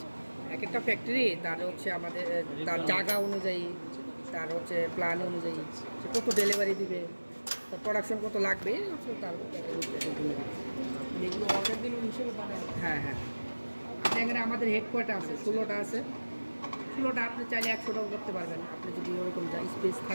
এক একটা ফ্যাক্টরি তার হচ্ছে আমাদের তার জায়গা অনুযায়ী, তার হচ্ছে প্ল্যান অনুযায়ী সে কত ডেলিভারি দিবে, তার প্রোডাকশন কত লাগবে, তার এগুলো অর্ডার দিলে হিসেবে পাবেন। হ্যাঁ হ্যাঁ এখানে আমাদের হেডকোয়ার্টার আছে, 16টা আছে। 16টা আপনি চাইলে 100টাও করতে পারবেন, আপনি যদি ওরকম যা স্পেস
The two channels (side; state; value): both; inverted; correlation -1.00